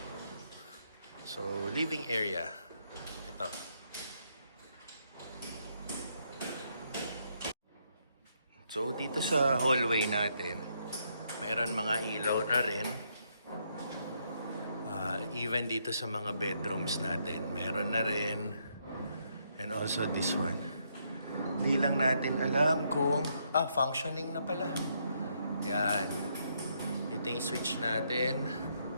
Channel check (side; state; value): both; inverted; correlation -0.75